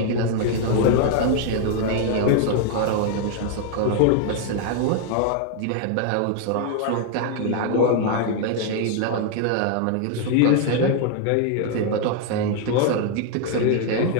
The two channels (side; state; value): both; different; correlation 0.00